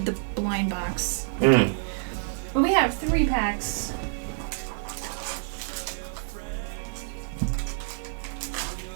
the blind box. Okay. But we have 3 packs.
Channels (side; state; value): left; silent; 60 dB below the other